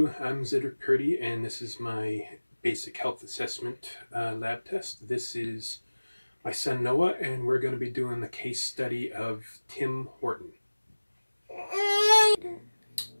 I'm Cedric Purdy, and this is my basic health assessment lab test. This is my son Noah, and we're going to be doing the case study of Tim Horton.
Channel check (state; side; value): inverted; both; correlation -1.00